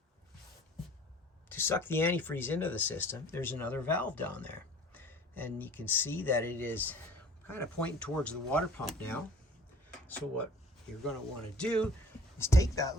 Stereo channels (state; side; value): normal; both; correlation 0.48